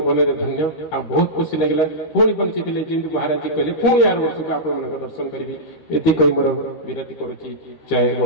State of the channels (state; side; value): late; right; 13 ms